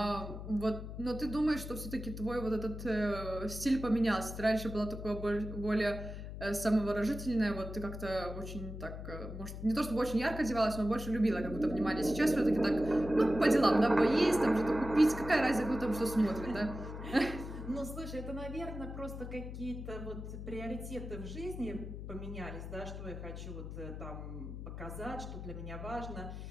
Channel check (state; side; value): noise; left; hum, 9 dB below the sound